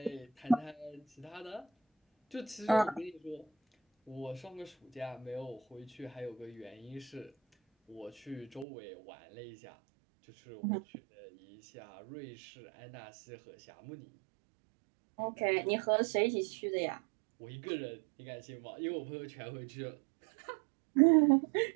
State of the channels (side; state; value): left; drops out; at 8.7 s